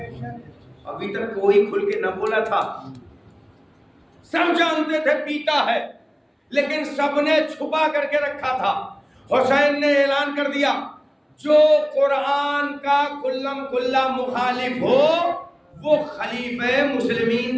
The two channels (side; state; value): both; identical; correlation 1.00